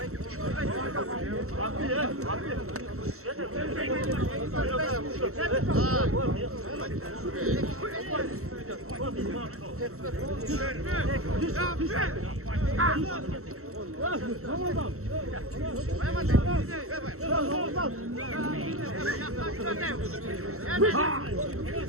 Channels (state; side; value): late; left; 0.63 ms